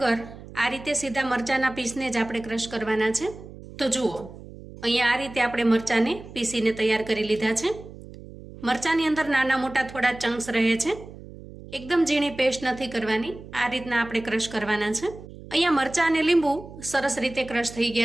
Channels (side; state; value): right; noise; hum, 16 dB below the sound